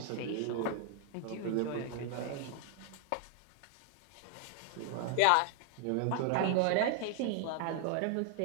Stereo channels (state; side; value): different; both; correlation 0.00